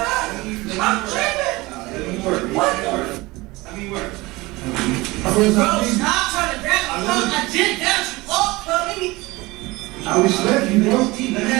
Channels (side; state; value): left; quieter; 21.6 dB